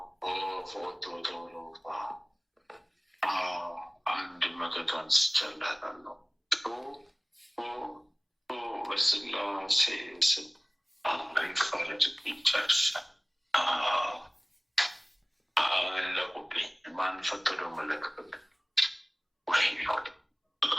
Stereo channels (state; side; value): identical; both; correlation 1.00